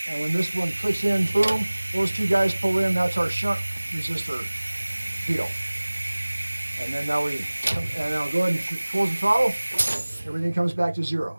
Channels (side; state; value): both; inverted; correlation -1.00